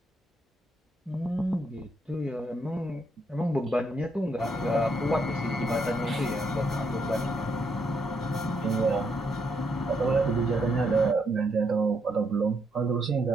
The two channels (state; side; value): normal; both; correlation 0.76